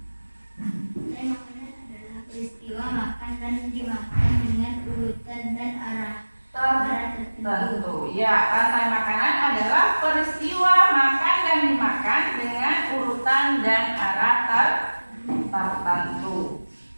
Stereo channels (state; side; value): inverted; both; correlation -1.00